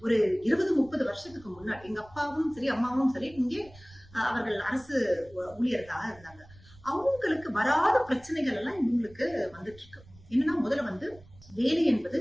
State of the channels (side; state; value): right; noise; rumble, 24 dB below the sound